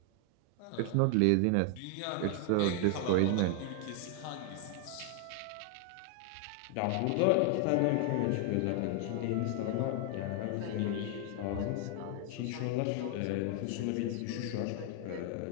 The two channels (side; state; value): both; different; correlation 0.00